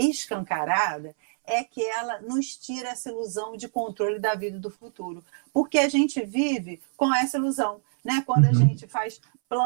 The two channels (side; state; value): left; silent; 61 dB below the other